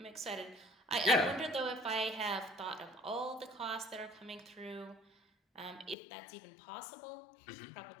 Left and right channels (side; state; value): right; drops out; at 6.0 s